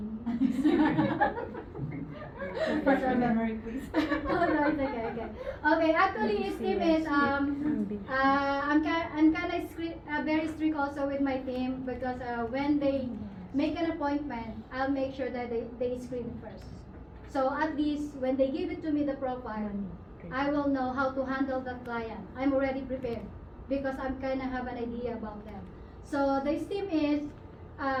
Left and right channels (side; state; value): both; identical; correlation 1.00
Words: Refresh our memory, please. Oh no, it's okay, okay. Okay, actually STEAM is I'm kind of very strict also with my team because when they make an appointment, I'll make sure that they screen it first. So at least when they give it to me the profile, I will know how to handle the client. I'm already prepared because I'm kind of have an idea about them. So the STEAM is